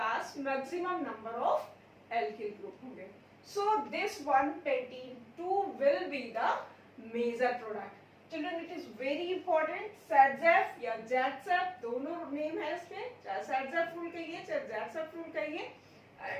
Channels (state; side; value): identical; both; correlation 1.00